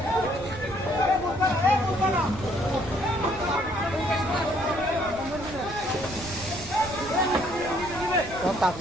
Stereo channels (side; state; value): right; noise; rumble, 14 dB below the sound